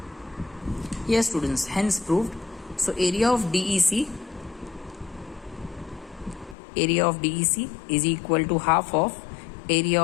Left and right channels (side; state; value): right; drops out; at 6.6 s